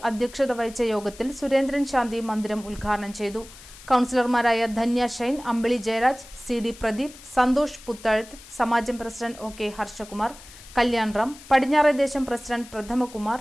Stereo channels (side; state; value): left; noise; hiss, 19 dB below the sound